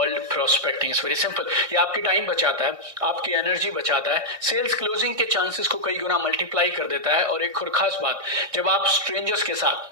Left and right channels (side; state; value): left; late; 1.5 ms